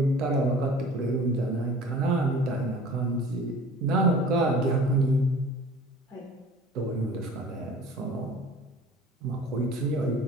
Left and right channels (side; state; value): both; normal; correlation 0.45